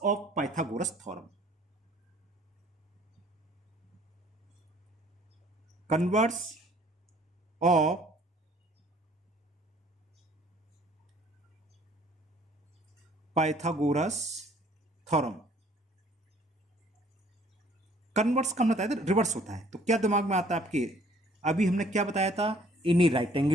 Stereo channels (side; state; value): both; normal; correlation 0.57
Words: Pythagoras theorem, converse of Pythagoras theorem. Converse का बताया था, रिवर्स होता है। तो क्या दिमाग में आता है आपके, अभी हमने क्या बताया था, in a right